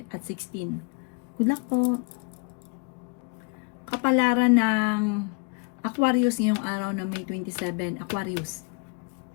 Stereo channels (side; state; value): right; quieter; 34.2 dB